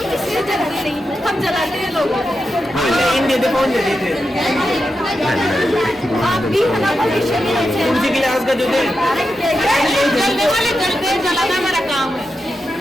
किसी से जलाते नहीं, हम जलाते हैं लोगों को। आप भी हमारा भविष्य में ऐसे हैं। उसी गिलास का जो दे जलने वाले जलते जलाना हमारा काम है।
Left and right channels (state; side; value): normal; both; correlation 0.88